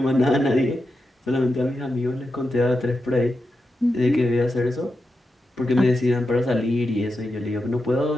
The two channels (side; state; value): both; normal; correlation 0.88